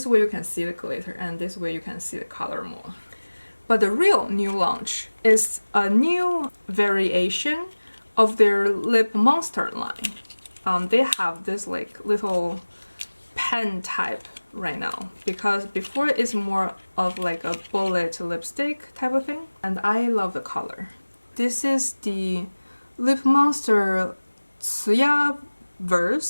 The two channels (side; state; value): both; inverted; correlation -1.00